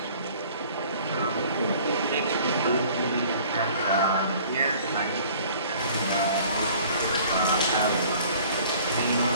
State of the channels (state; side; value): inverted; both; correlation -0.52